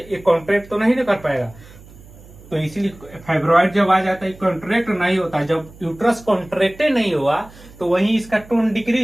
ये कॉन्ट्रैक्ट तो नहीं कर पाएगा, तो इसीलिए फाइब्रॉइड जब आ जाता है कॉन्ट्रैक्ट नहीं होता। जब यूट्रस कॉन्ट्रैक्टे नहीं हुआ तो वहीं इसका टोन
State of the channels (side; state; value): right; noise; hum, 21 dB below the sound